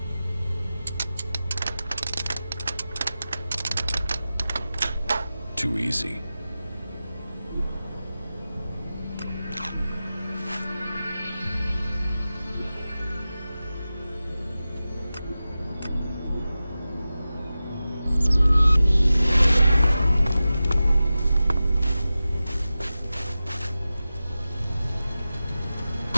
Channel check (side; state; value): both; inverted; correlation -0.95